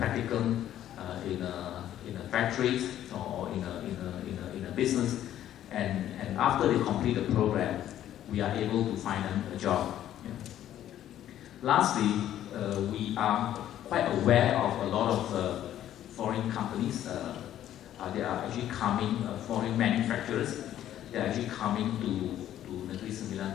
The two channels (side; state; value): right; quieter; 11.8 dB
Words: in a factories or in a business, and after they complete the program, we are able to find them a job. Lastly, we are quite aware of a lot of foreign companies. They are actually coming, foreign manufacturers, they are actually coming to Negeri Sembilan